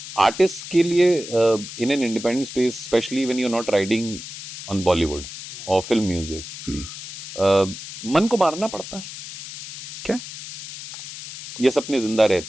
आर्टिस्ट के लिए in an independent space specially when you are not riding on Bollywood और फिल्म म्यूजिक मन को मारना पड़ता है क्या ये सपने जिंदा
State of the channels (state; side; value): noise; left; hiss, 11 dB below the sound